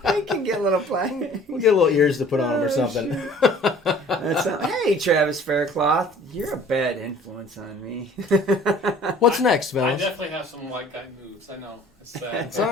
can get a little plaque. We'll get little ears to put on them or something. Hey, Travis Faircloth, you're a bad influence on me. What's next, I fellas? definitely have some white guy moves. I know. It's all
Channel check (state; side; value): normal; both; correlation 0.51